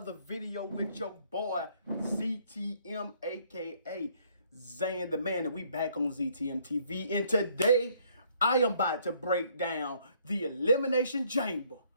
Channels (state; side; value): inverted; both; correlation -0.65